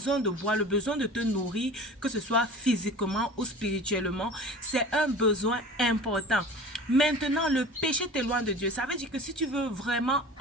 de boire, le besoin de te nourrir, que ce soit physiquement ou spirituellement, c'est un besoin important. Maintenant, le péché t'éloigne de Dieu. Ça veut dire que si tu veux vraiment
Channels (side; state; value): both; normal; correlation 0.39